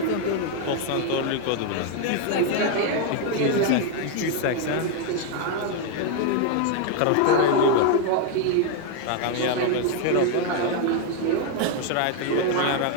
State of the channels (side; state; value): both; different; correlation 0.01